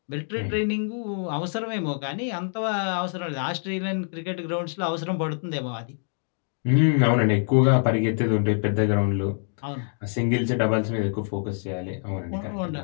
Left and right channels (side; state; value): right; silent; 61 dB below the other